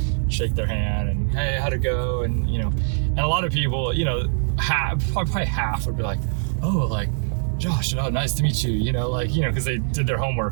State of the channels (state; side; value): silent; left; digital silence